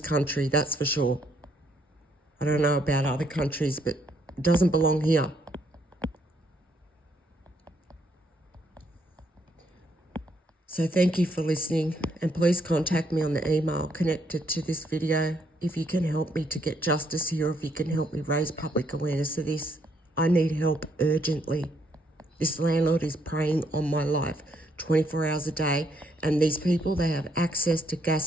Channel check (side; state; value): both; normal; correlation 0.72